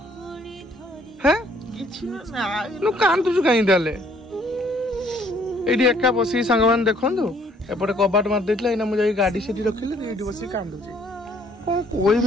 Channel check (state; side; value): normal; both; correlation 0.62